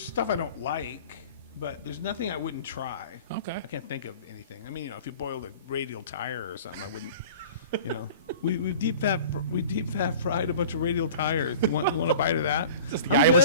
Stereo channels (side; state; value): both; inverted; correlation -0.42